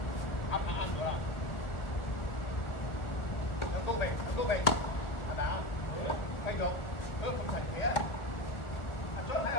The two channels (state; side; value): late; right; 1.4 ms